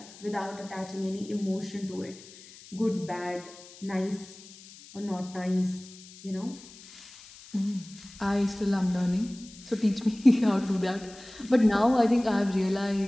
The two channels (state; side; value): noise; left; hiss, 20 dB below the sound